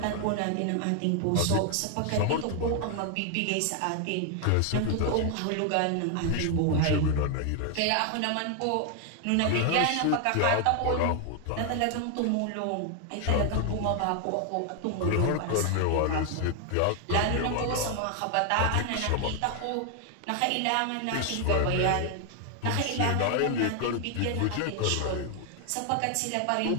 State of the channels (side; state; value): both; different; correlation 0.00